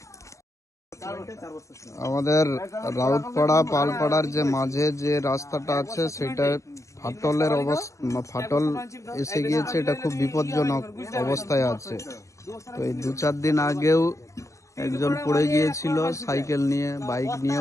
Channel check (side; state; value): right; late; 0.15 ms